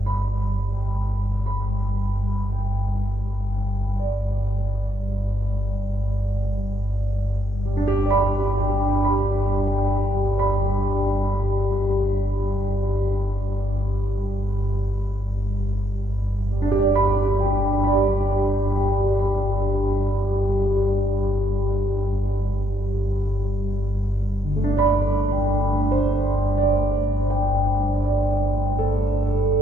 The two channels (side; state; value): both; normal; correlation 0.75